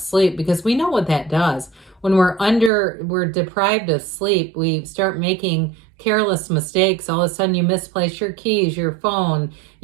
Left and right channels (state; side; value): drops out; left; at 2.7 s